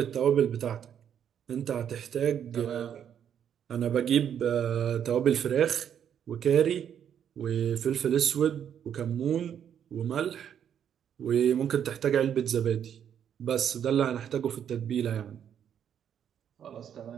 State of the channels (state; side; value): quieter; left; 8.9 dB